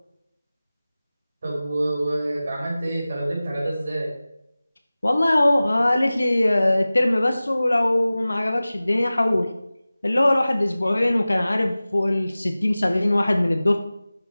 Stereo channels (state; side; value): inverted; both; correlation -0.97